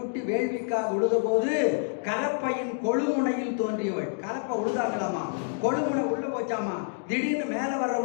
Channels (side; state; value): right; silent; digital silence